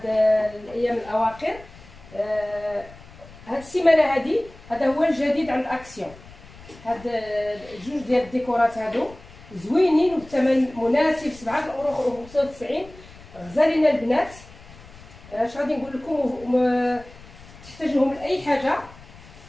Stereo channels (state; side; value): noise; left; rumble, 20 dB below the sound